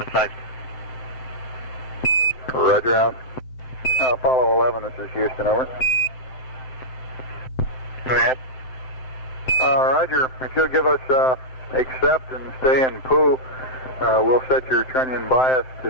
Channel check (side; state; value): right; late; 7.7 ms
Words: sight. Roger, out. Apollo 11, this is Houston. Over. Go ahead. Roger, if you'll give us accept and stay in POO, we'll set your trunnion bias